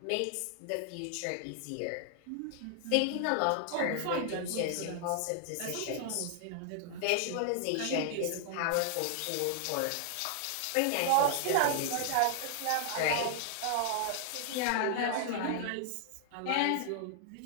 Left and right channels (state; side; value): different; both; correlation 0.00